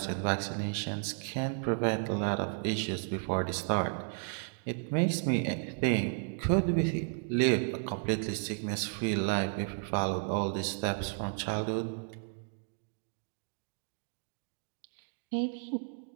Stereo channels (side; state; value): left; silent; digital silence